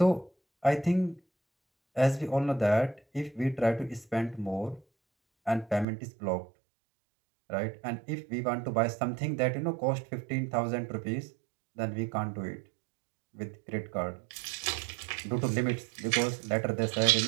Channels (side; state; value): left; drops out; at 5.9 s